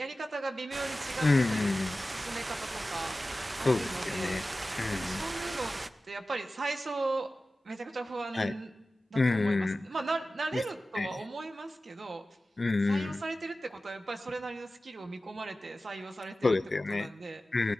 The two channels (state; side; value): normal; both; correlation 0.95